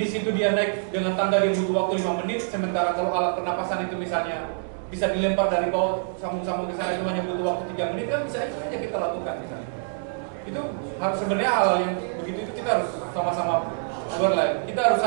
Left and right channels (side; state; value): left; silent; digital silence